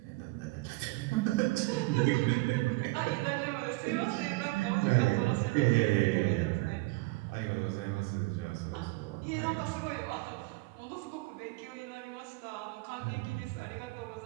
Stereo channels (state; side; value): quieter; left; 23.7 dB